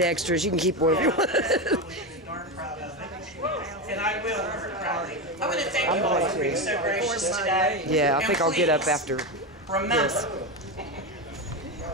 extras. You can keep one if you want. And I will. I want to thank you all for being so gracious today. Yeah, I think I'll get up please after. Remember,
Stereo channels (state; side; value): normal; both; correlation 0.15